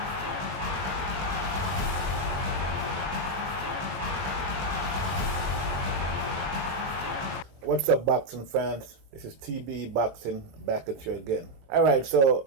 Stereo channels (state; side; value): late; left; 21 ms